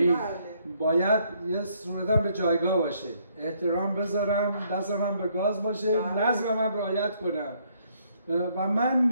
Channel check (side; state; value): both; inverted; correlation -0.69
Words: باید یه صورتم به جایگاه باشه، احترام بذارم، دست من به گاز باشه، نظم من رعایت کنم. و من